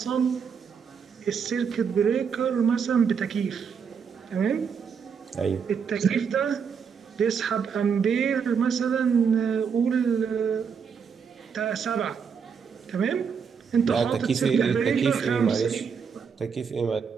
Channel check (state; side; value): quieter; left; 6.5 dB